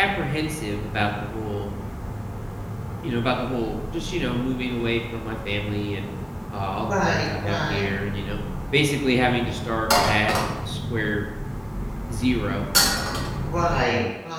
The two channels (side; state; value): both; identical; correlation 1.00